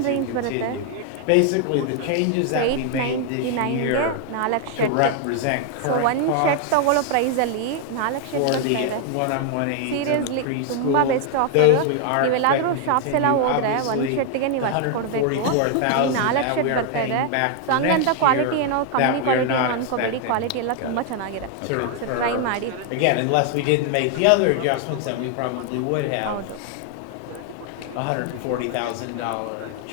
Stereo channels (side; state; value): both; different; correlation 0.00